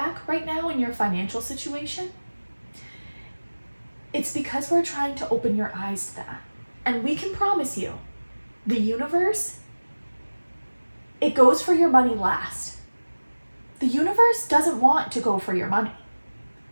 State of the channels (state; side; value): inverted; both; correlation -1.00